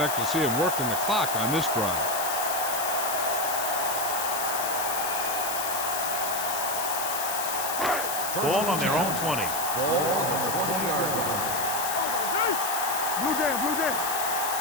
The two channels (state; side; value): noise; left; hiss, 4 dB below the sound